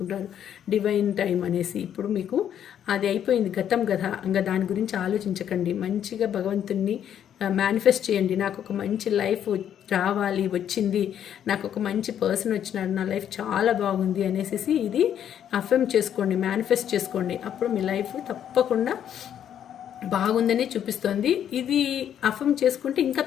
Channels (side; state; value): right; quieter; 9.7 dB